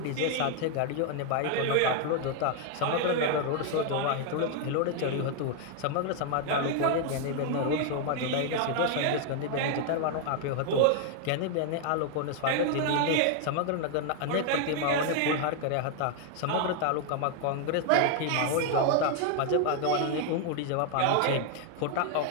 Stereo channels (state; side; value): different; both; correlation 0.00